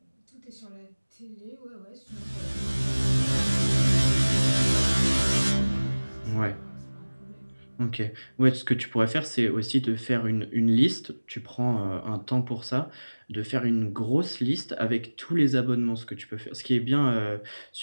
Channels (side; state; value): both; inverted; correlation -1.00